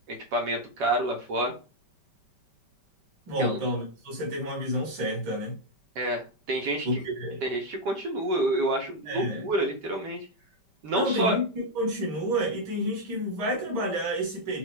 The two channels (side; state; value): left; late; 5.1 ms